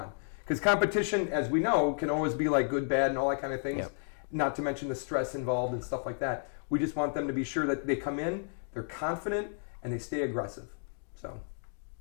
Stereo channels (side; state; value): right; silent; digital silence